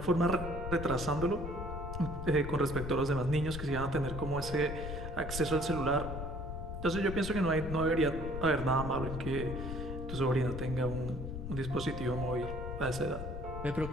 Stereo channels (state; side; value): noise; left; rumble, 6 dB below the sound